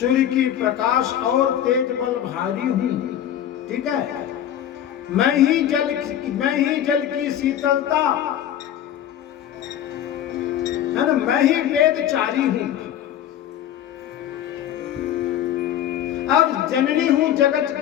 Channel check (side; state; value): right; quieter; 10.7 dB